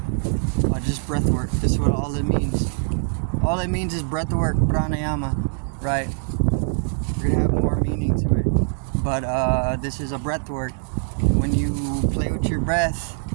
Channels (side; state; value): left; silent; digital silence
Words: just breath work. This is what all it means. All it means is breath work, pranayama, right? We're gonna have more meaning to it, but this is a breath work. When you play with your breath